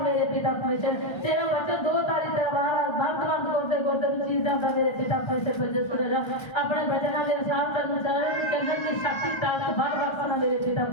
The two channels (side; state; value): right; late; 1.3 ms